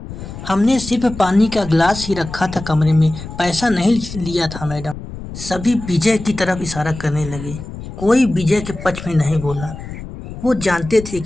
हमने सिर्फ पानी का गिलास ही रखा था कमरे में, पैसा नहीं लिया था मैडम। सभी विजय की तरफ इशारा करने लगे। कोई विजय के पक्ष में नहीं बोला। वो जानते थे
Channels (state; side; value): noise; left; rumble, 11 dB below the sound